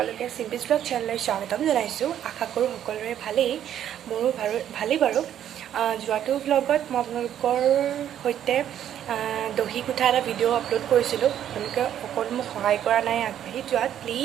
simple blog চেনেললৈ স্বাগতম জনাইছোঁ। আশা কৰোঁ সকলোৰে ভালেই, মোৰো ভালেই বাৰু। যোৱাটো ব্লগত মই আপোনালোকৰ সৈতে দহি গুঠা এটা ভিডিঅ' আপলোড কৰিছিলোঁ। আপোনালোকে অকল মোক সহায় কৰা নাই আগবাঢ়ি যোৱাত।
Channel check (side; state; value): left; quieter; 10.5 dB